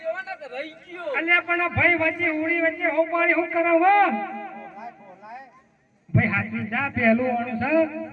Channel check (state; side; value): identical; both; correlation 1.00